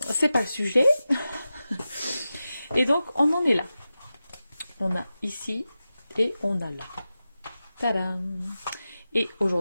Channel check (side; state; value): both; inverted; correlation -0.93